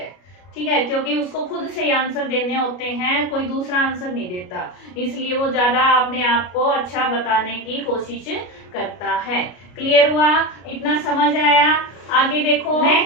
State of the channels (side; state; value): right; late; 33 ms